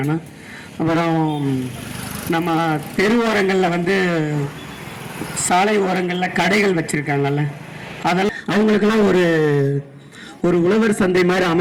அப்புறம் நம்ம தெரு ஓரங்களில் வந்து சாலை ஓரங்களில் கடைகள் வச்சுருக்காங்கல்ல, அதெல்லாம் அவங்களுக்கெல்லாம் ஒரு உழவர் சந்தை மாதிரி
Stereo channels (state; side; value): identical; both; correlation 1.00